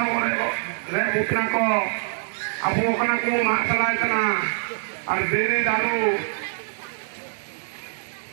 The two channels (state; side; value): silent; left; 62 dB below the other